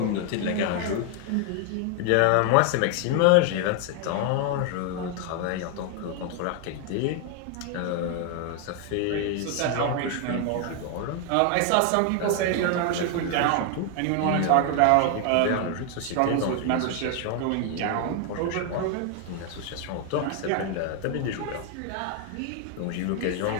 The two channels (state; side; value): different; both; correlation 0.00